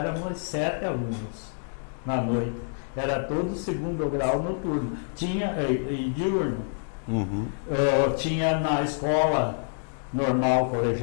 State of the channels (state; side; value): silent; right; digital silence